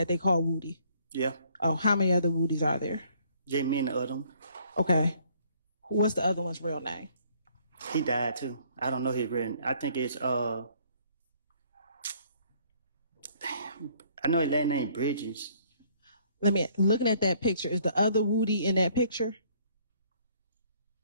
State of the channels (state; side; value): inverted; both; correlation -0.62